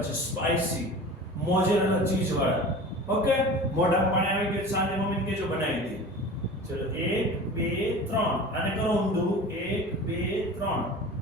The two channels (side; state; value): both; normal; correlation 0.37